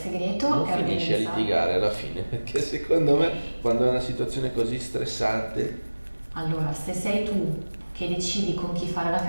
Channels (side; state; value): both; inverted; correlation -1.00